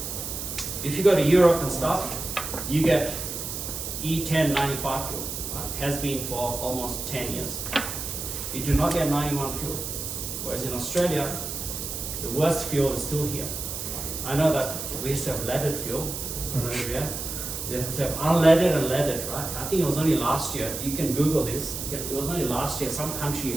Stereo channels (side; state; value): right; noise; hiss, 6 dB below the sound